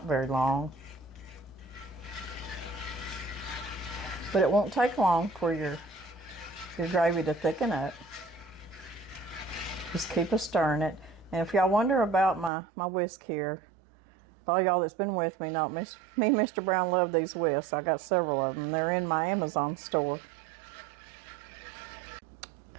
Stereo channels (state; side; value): drops out; left; at 12.5 s